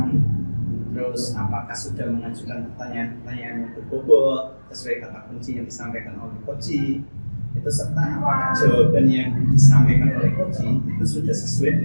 terus apakah sudah mengajukan pertanyaan-pertanyaan yang berbobot sesuai kata kunci yang disampaikan oleh coaching itu, serta apakah jawaban yang disampaikan oleh coaching itu sudah sesuai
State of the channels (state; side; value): inverted; both; correlation -1.00